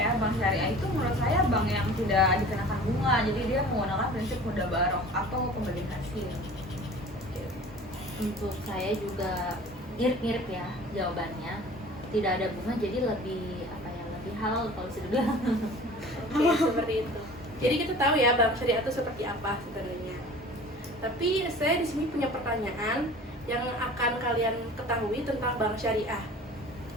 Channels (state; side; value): normal; both; correlation 0.43